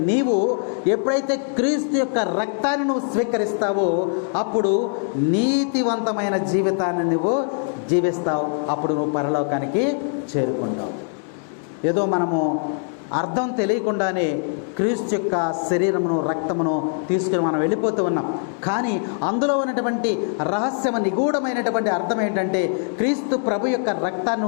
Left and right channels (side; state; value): right; silent; 55 dB below the other